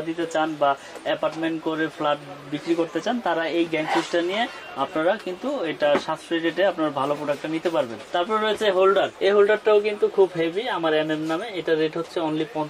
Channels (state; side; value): identical; both; correlation 1.00